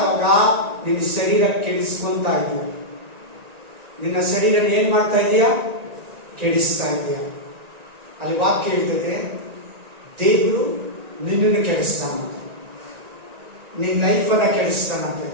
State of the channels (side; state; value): left; late; 1.9 ms